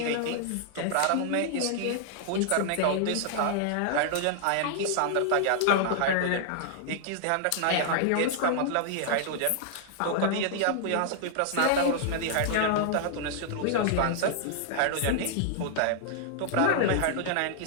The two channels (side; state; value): both; different; correlation -0.01